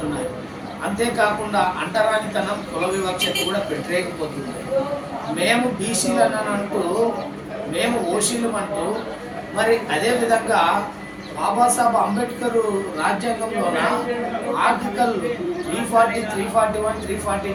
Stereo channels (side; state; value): both; identical; correlation 1.00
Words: అంతేకాకుండా అంటరానితనం, కుల వివక్షత కూడా పెట్టలేకపోతుంది. మేము బీసీలను అంటూ, మేము ఓసీలు అంటూ, మరి అదేవిధంగా బాబాసాహెబ్ అంబేద్కర్ రాజ్యాంగంలోన ఆర్టికల్ 340, 341,